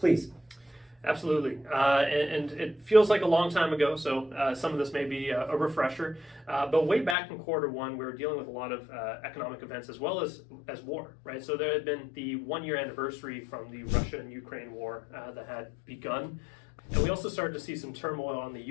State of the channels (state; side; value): drops out; right; at 7.2 s